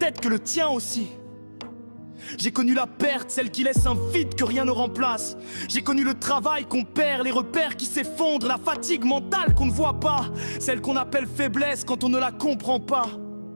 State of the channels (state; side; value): inverted; both; correlation -1.00